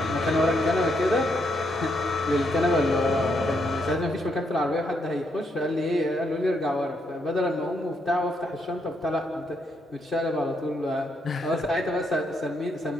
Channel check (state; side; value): normal; both; correlation 0.76